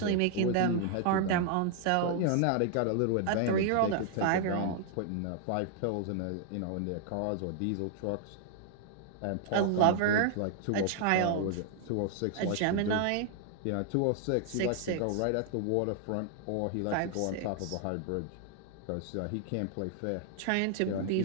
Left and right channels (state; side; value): different; both; correlation 0.00